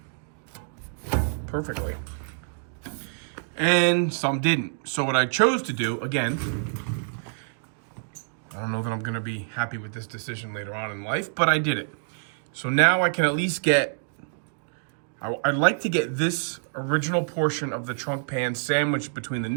perfectly, and some didn't. So what I chose to do, again, I don't know that I'm gonna be happy with this decision later on in life, but I did it. So now I can at least get, I'd like to get this original portion of the trunk pan sandwiched between the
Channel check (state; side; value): silent; left; digital silence